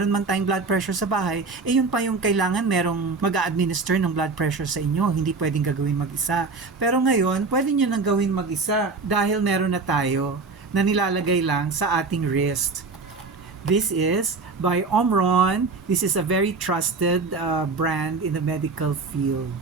man tayong blood pressure sa bahay, eh yun pa yung kailangan merong mag-a-administer ng blood pressure sa inyo. Hindi pwedeng gawin mag-isa. Pero ngayon, pwede nyo nang gawin mag-isa dahil meron na tayo na nilalagay lang sa ating wrist. This is by Omron. This is a very trusted brand in the medical field.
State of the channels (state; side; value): quieter; left; 4.1 dB